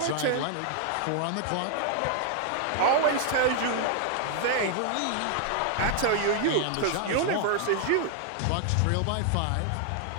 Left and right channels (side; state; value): both; different; correlation 0.00